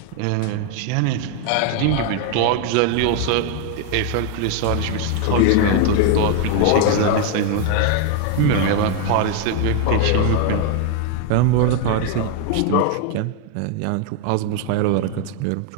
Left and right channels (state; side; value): different; both; correlation 0.01